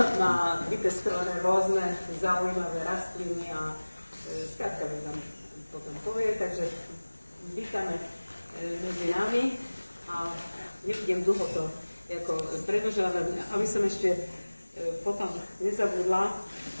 Má vypestované rôzne zaujímavé rastliny a skrátka mi tam potom povie, takže vítame medzi nami a nebudem dlho to predĺžovať, aby som ešte potom nezabudla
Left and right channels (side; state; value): both; inverted; correlation -1.00